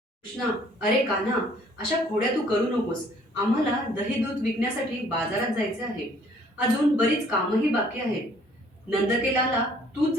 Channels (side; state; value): both; normal; correlation 0.59